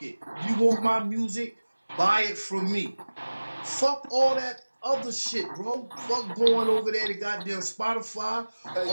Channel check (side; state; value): both; inverted; correlation -1.00